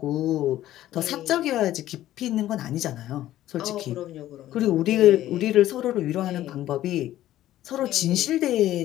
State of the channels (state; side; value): quieter; right; 13.7 dB